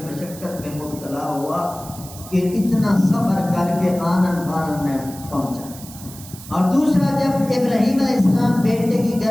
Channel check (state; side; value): noise; right; hiss, 16 dB below the sound